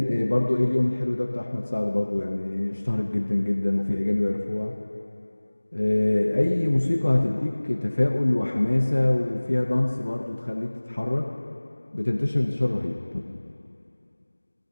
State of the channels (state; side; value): inverted; both; correlation -1.00